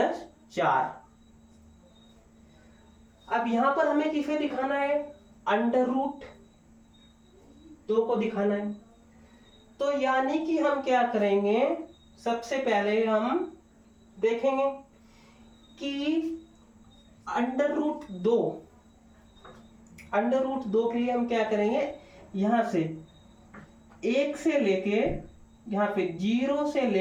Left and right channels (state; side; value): identical; both; correlation 1.00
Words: अब यहां पर हमें किसे दिखाना है? √2 को दिखाना है। तो यानी कि हम क्या करेंगे? सबसे पहले हम देखेंगे कि √2 के लिए हम क्या करेंगे? यहां से 1 से लेके यहां पे 0 से